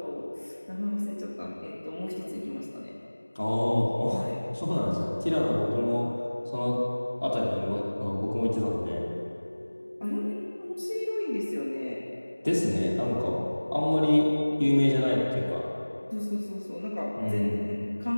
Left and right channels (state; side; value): inverted; both; correlation -1.00